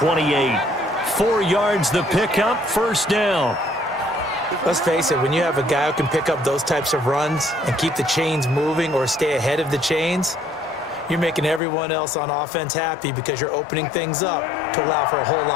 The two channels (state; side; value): drops out; right; at 11.6 s